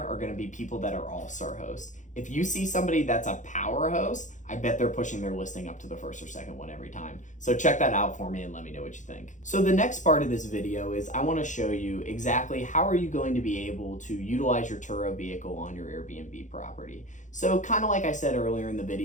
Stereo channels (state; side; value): late; right; 0.36 ms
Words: are gonna be people that are all-star hosts. If you see somebody that's a power host, I bet they're pushing their listing up to the first or second one every time. So check that out for me and let me know what you think. So the next part of this video is I want to show you exactly how are you going to be able to utilize your Turo vehicle on your Airbnb property. So kind of like I said earlier in the